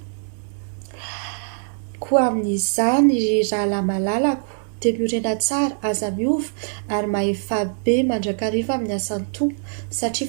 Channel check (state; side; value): silent; left; digital silence